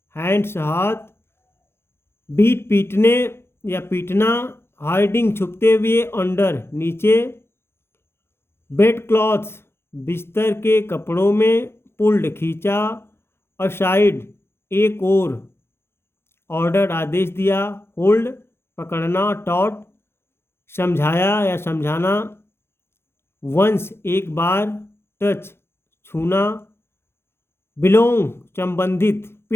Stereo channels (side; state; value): right; late; 0.12 ms